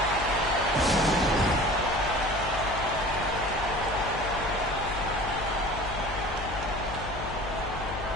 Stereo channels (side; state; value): left; noise; hum, 10 dB below the sound